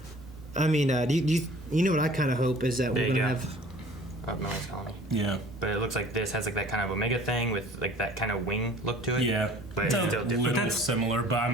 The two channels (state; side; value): normal; both; correlation 0.49